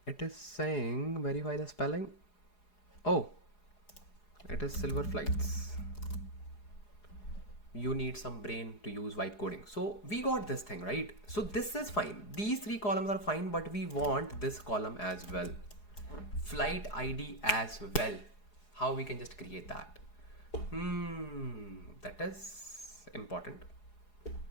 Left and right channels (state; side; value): late; right; 4.8 ms